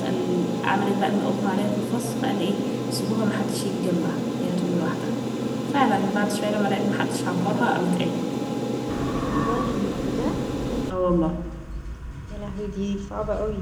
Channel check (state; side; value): identical; both; correlation 1.00